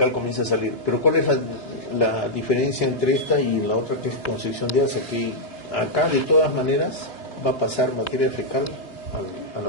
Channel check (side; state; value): right; late; 3.5 ms